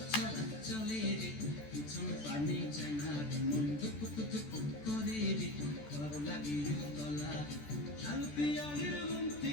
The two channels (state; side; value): late; right; 14 ms